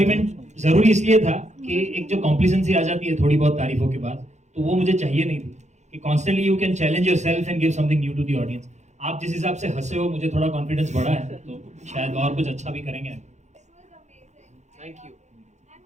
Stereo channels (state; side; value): late; left; 0.33 ms